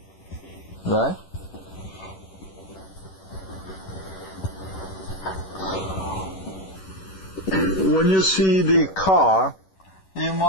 Right? When you see the car, you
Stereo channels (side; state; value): right; late; 11 ms